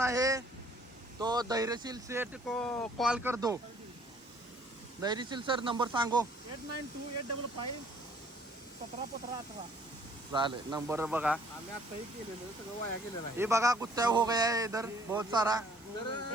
है तो धैर्यशील सेठ को कॉल कर दो. धैर्यशील सर नंबर सांगो. 8928551718. चालेल, नंबर बघा. आम्ही आताही केलेलं सगळं वाया गेलेलं आहे. ये बघा कुत्ता हो गया है इधर बहुत सारा.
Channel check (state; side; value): normal; both; correlation 0.59